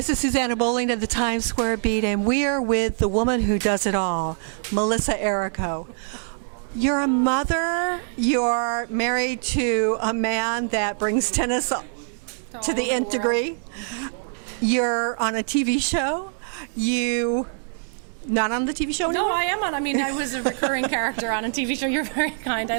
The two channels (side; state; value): left; silent; 63 dB below the other